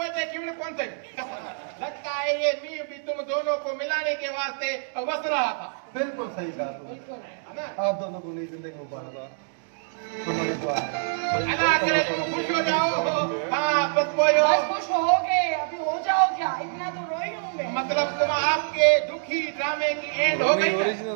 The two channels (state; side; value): silent; left; digital silence